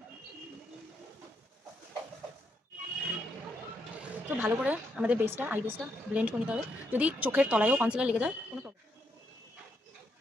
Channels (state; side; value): normal; both; correlation 0.78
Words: তো ভালো করে আমাদের বেসটা, আই বেসটা ব্লেন্ড করে নিতে হবে। যদি চোখের তলায়ও কনসিলার লেগে যায় কোনো প্রবলেম,